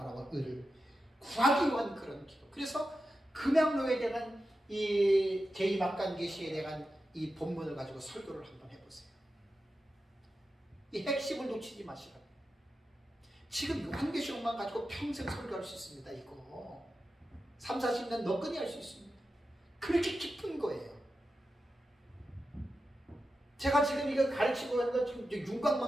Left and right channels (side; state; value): both; normal; correlation 0.91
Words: 의를 구하기 위한 그런 기도. 그래서 금양로에 대한 이 제2막간계시에 대한 이 본문을 가지고 설교를 한번 해보세요. 이 핵심을 놓치지 마시라고. 지금 요한계시록만 가지고 평생 설교할 수 있습니다. 이거 3, 40년 너끈히 할 수 있습니다. 그렇게 깊은 거예요. 제가 지금 이거 가르치고 하는 건 지금